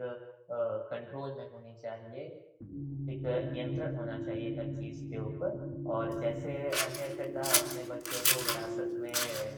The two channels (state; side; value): identical; both; correlation 1.00